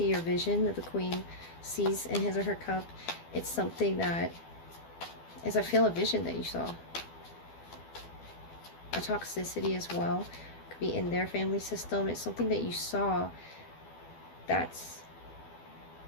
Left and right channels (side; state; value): right; late; 12 ms